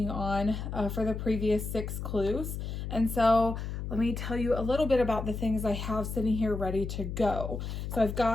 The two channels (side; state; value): left; noise; hum, 5 dB below the sound